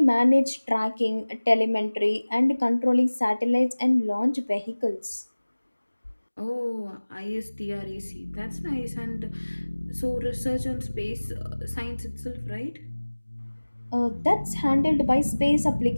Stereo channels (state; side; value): inverted; both; correlation -1.00